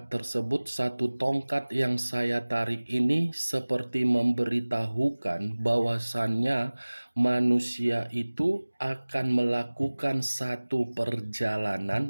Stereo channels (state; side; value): inverted; both; correlation -1.00